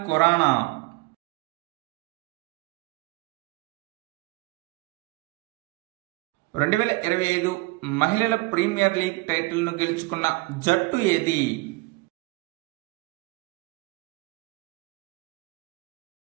Khurrana. రెండు 2025 మహిళల ప్రీమియర్ లీగ్ టైటిల్ను గెలుచుకున్న జట్టు ఏది?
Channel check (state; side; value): quieter; left; 22.9 dB